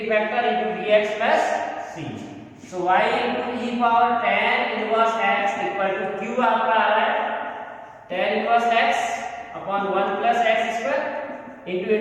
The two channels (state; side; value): identical; both; correlation 1.00